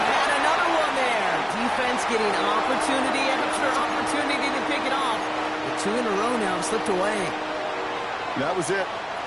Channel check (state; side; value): identical; both; correlation 1.00